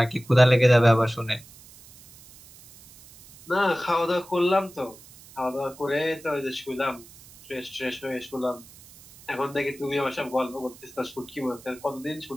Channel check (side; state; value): right; noise; hiss, 22 dB below the sound